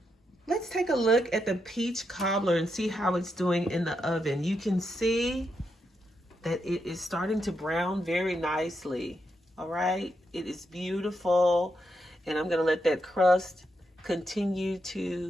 Let's take a look at the peach cobbler and see how it's doing in the oven. You can see that it is starting to brown very nicely. All right, it is beautiful. And I'm gonna let that crust continue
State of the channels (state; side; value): normal; both; correlation 0.83